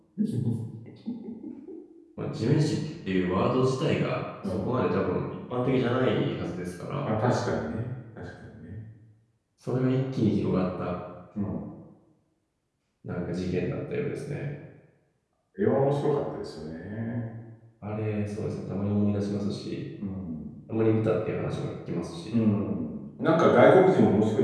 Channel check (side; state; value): both; identical; correlation 1.00